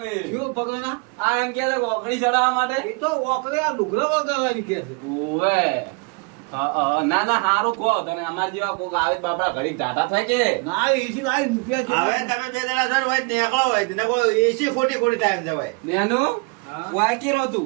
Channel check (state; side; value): quieter; left; 30.9 dB